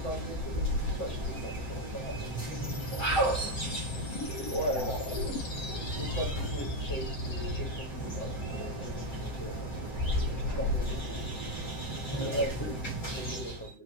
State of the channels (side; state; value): right; late; 7.7 ms